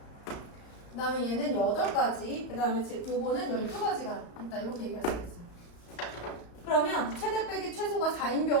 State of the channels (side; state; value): right; late; 34 ms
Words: 그 다음에 얘는 8가지, 그 다음에 요거는 12가지가 있다. 이렇게 얘기할 수 있어요. 그러면 최대 빼기 최소가 4인